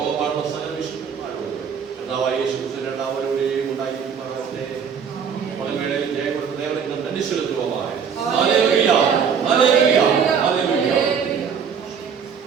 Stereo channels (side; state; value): left; quieter; 6.9 dB